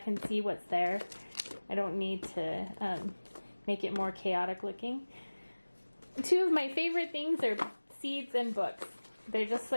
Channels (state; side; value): inverted; both; correlation -1.00